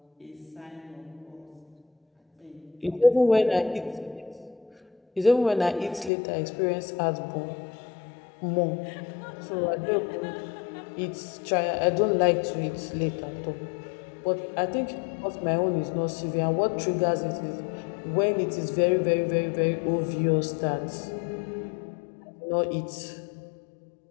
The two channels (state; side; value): drops out; right; at 6.1 s